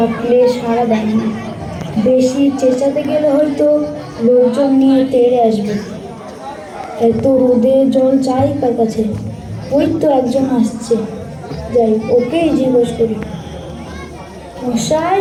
সাড়া দেয় না। বেশি চেঁচাতে গেলে হয়তো লোকজন নিয়ে তেড়ে আসবে। এত রোদে জল চাই কার কাছে? ওই তো একজন আসছে, যাই ওকেই জিজ্ঞেস করি। মশাই,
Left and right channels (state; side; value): identical; both; correlation 1.00